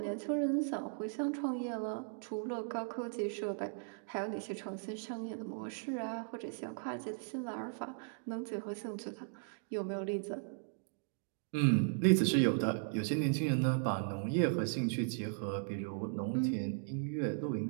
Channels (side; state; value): left; silent; digital silence